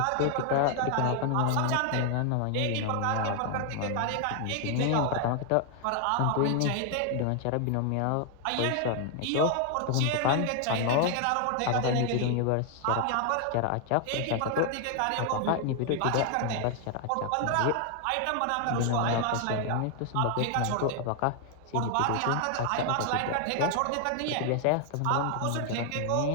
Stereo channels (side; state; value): both; different; correlation 0.00